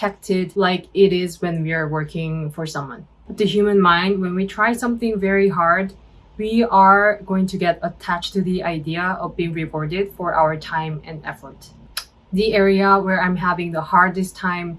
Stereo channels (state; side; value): identical; both; correlation 1.00